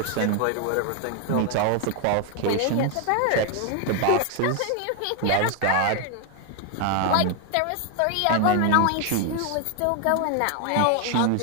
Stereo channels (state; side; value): different; both; correlation 0.01